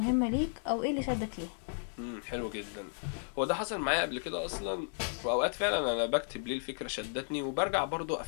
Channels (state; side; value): silent; right; digital silence